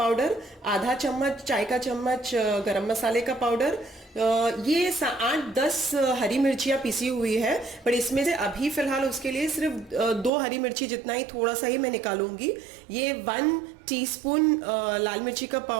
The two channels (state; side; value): drops out; left; at 10.3 s